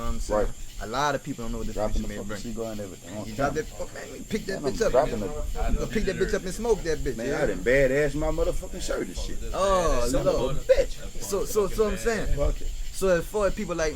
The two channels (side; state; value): both; identical; correlation 1.00